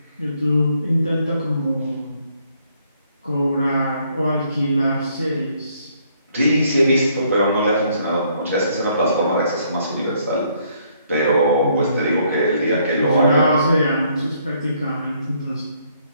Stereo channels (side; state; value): both; inverted; correlation -0.68